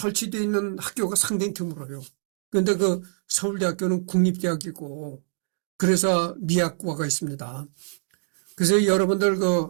있는 학교가 상당히 드물어요. 그런데 그 서울대학교는 국립대학이고 그래서 미학과가 있습니다. 그래서 여러분들 그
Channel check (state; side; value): silent; left; digital silence